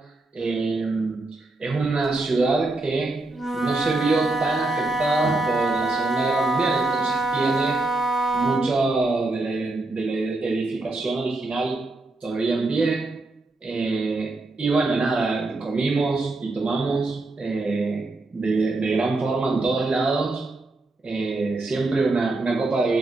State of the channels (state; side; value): quieter; left; 3.0 dB